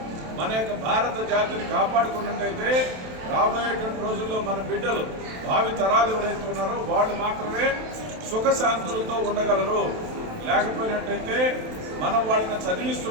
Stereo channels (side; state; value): left; late; 27 ms